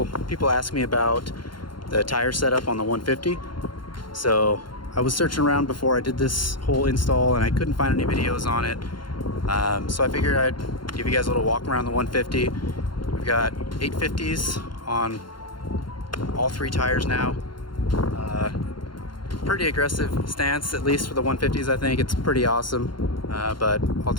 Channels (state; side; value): late; right; 0.72 ms